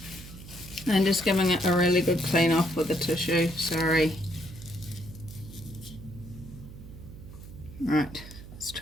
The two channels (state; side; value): noise; right; hum, 15 dB below the sound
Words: I'm just giving it a really good clean off with the tissue, sorry. Right, let's